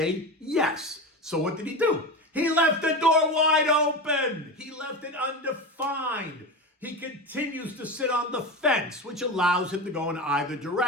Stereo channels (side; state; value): both; normal; correlation 0.23